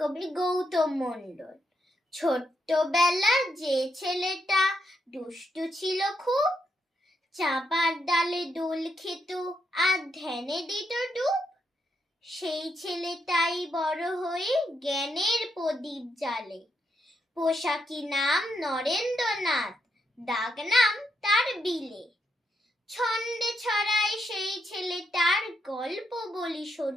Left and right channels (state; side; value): normal; both; correlation 0.80